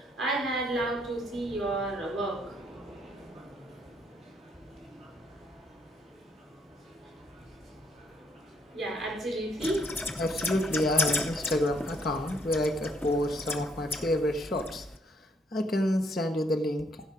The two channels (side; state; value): both; normal; correlation 0.70